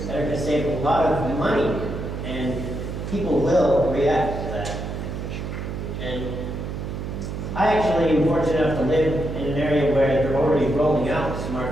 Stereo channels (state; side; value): noise; right; hum, 5 dB below the sound